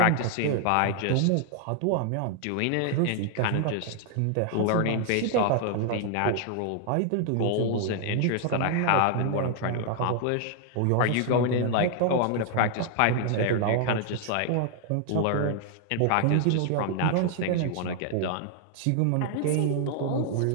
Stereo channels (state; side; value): different; both; correlation 0.00